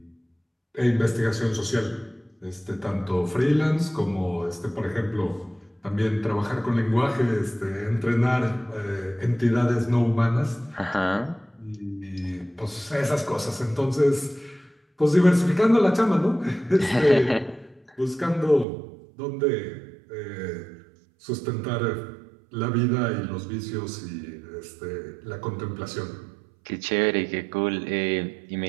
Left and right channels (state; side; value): drops out; left; at 18.7 s